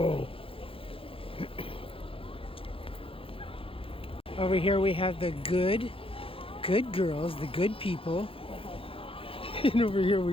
Over here we have the good girls, the good people. And over here we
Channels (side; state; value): right; late; 0.27 ms